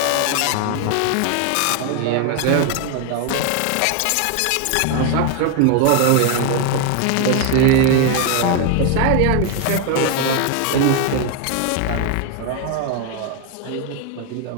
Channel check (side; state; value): both; different; correlation 0.01